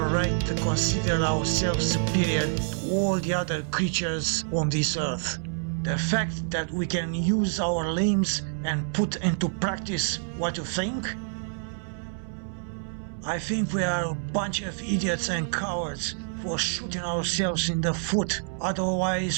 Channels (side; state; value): left; silent; 60 dB below the other